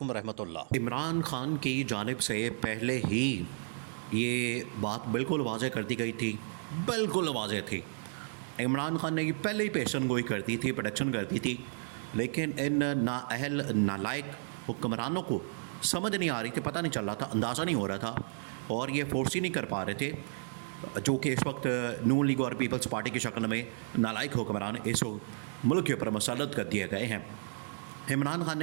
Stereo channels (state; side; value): silent; left; digital silence